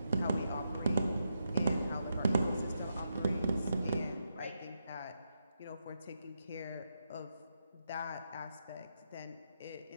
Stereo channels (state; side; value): inverted; both; correlation -0.84